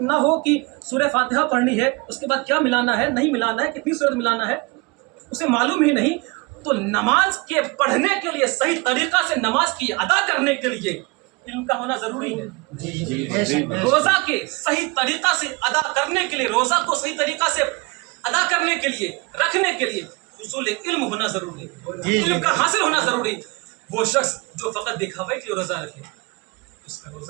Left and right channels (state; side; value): quieter; left; 26.8 dB